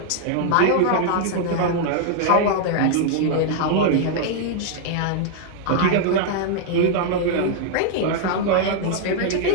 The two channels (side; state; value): both; different; correlation 0.00